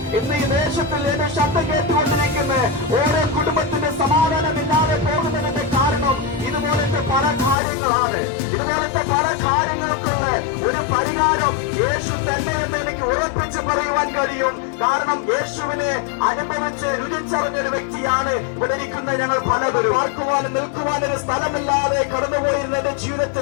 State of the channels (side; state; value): right; drops out; at 7.6 s